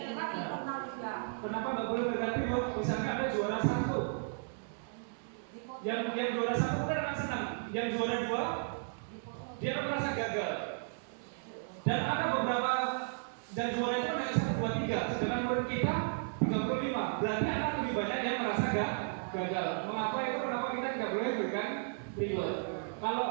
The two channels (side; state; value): left; silent; digital silence